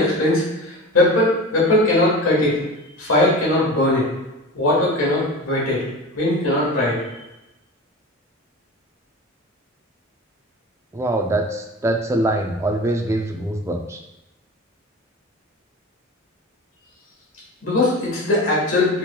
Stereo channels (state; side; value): normal; both; correlation 0.32